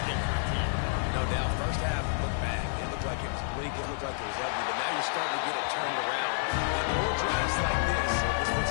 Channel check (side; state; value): right; silent; 58 dB below the other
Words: for a team. No doubt, first half looked bad. It looked like it was weak. It looked like it was ugly. But now you're starting to get it turned around. And more drives like this is